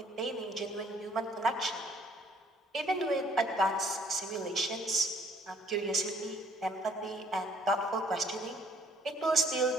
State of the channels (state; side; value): normal; both; correlation 0.60